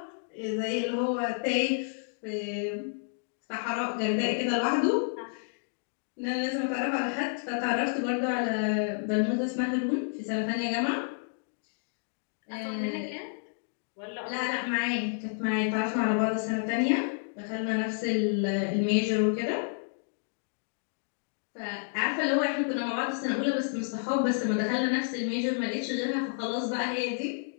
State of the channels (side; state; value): right; silent; digital silence